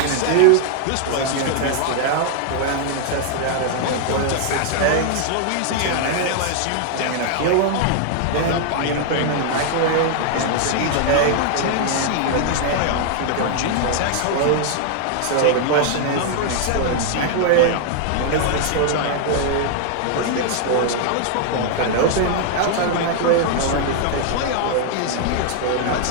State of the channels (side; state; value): both; different; correlation 0.00